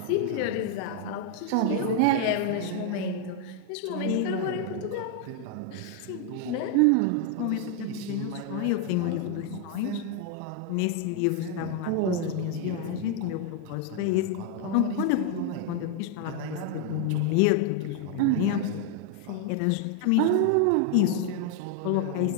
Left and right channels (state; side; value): different; both; correlation 0.00